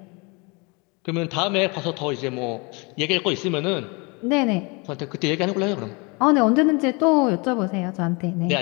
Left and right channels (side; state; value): right; quieter; 29.3 dB